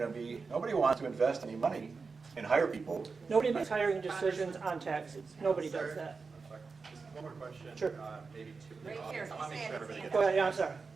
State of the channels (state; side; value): quieter; left; 4.6 dB